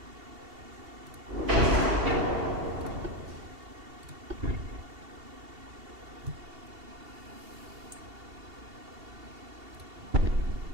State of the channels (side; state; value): left; late; 2.7 ms